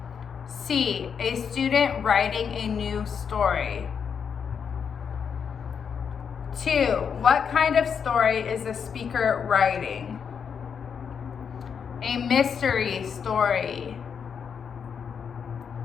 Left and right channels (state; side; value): quieter; right; 6.9 dB